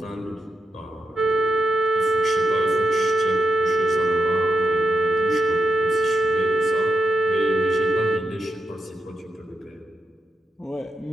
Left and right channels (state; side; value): normal; both; correlation 0.85